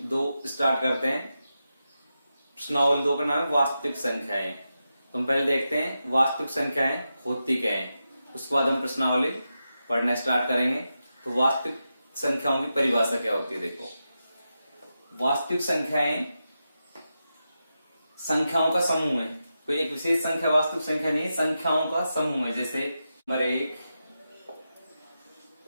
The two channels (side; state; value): both; inverted; correlation -0.89